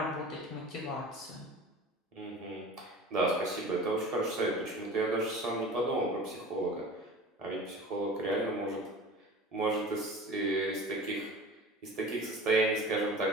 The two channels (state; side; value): normal; both; correlation 0.38